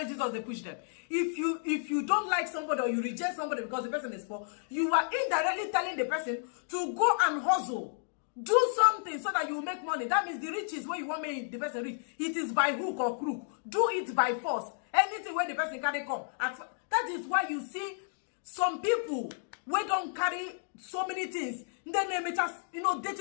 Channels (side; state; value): right; silent; digital silence